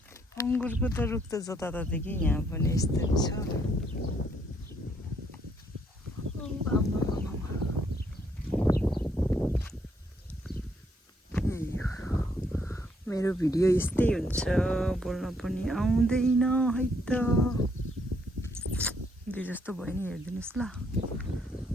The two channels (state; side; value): normal; both; correlation 0.71